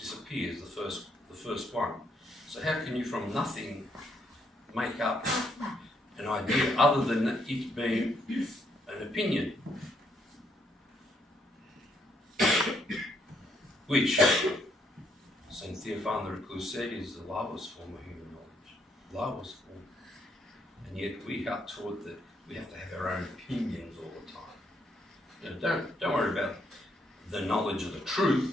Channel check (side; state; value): both; normal; correlation 0.73